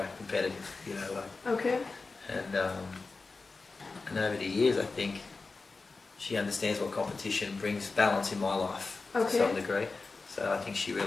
competitive. Okay. And over the years, I think she understands what competition brings balance in my life to some degree. So I think she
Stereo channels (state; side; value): quieter; right; 4.0 dB